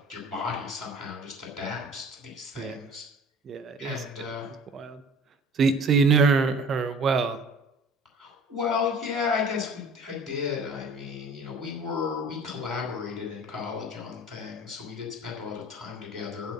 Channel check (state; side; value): normal; both; correlation 0.45